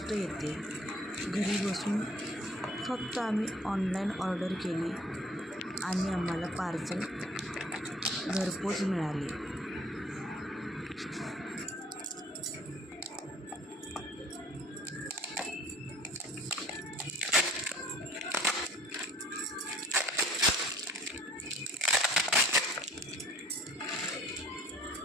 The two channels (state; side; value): normal; both; correlation 0.54